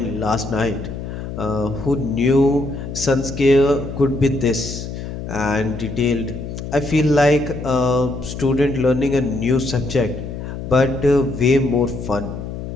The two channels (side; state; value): left; noise; hum, 8 dB below the sound